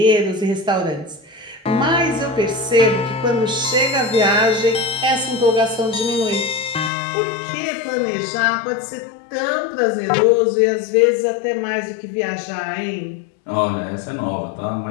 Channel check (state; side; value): drops out; right; at 6.9 s